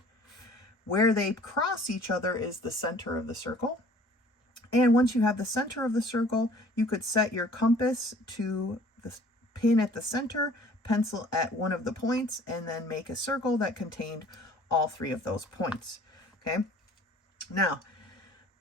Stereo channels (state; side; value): normal; both; correlation 0.52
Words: Where they cross each other is the center of the circle. And once you have the center of the circle, you could set your compass to the pin at the center, pencil at one of the points, and then make a circle that contained all three of those points. Okay. Now,